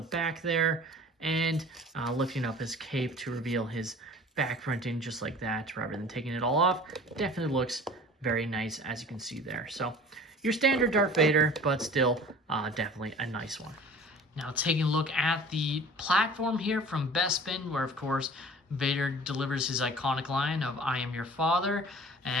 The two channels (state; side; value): normal; both; correlation 0.44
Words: back there, and lifting up his cape to reveal his back printing just like that rather than taking it all off. Definitely looks very nice, as you can see there. So your standard Darth Vader, but still definitely a nice one. Now taking a look at the platform here from Bespin, where of course Vader delivers his iconic line of "I am your father,"